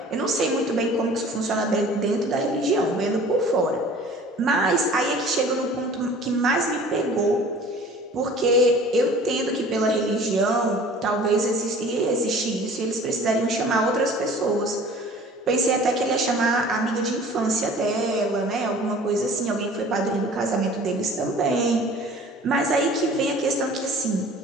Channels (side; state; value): both; normal; correlation 0.46